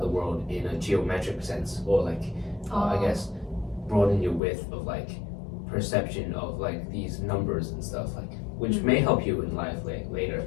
the world in a geometric sense, or like I guess broaden your width of like perception of like these numbers and stuff, like, which may help you in life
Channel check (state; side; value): drops out; right; at 4.4 s